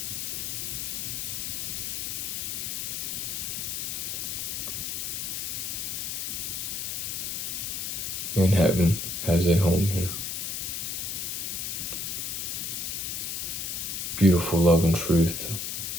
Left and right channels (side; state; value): left; noise; hiss, 3 dB below the sound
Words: and heaven has a home here. Beautiful love and truth.